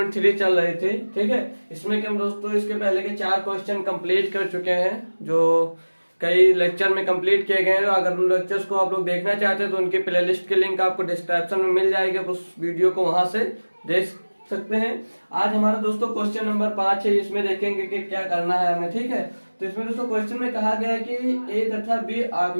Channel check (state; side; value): inverted; both; correlation -1.00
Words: चल रही थी। ठीक है, इसमें कि हम दोस्तों इसके पहले के 4 क्वेश्चन कंप्लीट कर चुके हैं, जो कई लेक्चर में कंप्लीट किए गए हैं। अगर उन लेक्चर्स को आप लोग देखना चाहते हैं तो उनकी प्लेलिस्ट की लिंक आपको डिस्क्रिप्शन में मिल जाएगी, आप उस वीडियो को वहां से देख सकते हैं। आज हमारा दोस्तों क्वेश्चन नंबर 5 है, इसमें देखेंगे कि क्या करना है हमें। ठीक है, तो इसमें दोस्तों क्वेश्चन में कहा गया है कि ए तथा बी